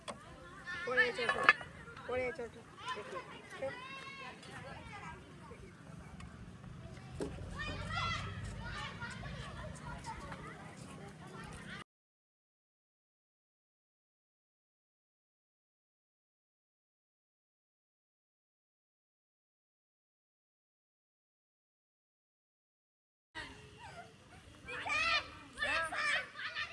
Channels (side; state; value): both; identical; correlation 1.00